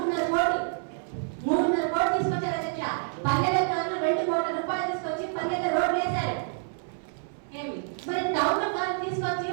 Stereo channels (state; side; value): silent; left; 59 dB below the other